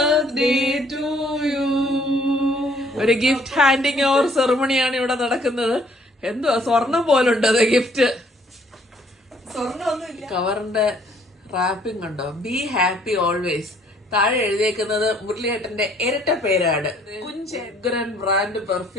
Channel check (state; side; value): normal; both; correlation 0.62